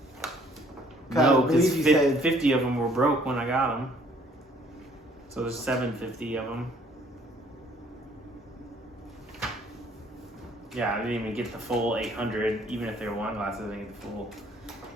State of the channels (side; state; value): both; normal; correlation 0.60